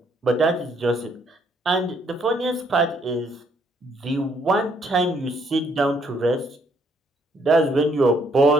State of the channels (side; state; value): both; normal; correlation 0.69